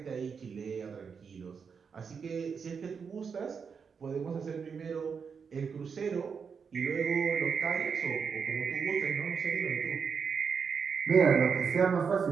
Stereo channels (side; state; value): left; quieter; 6.1 dB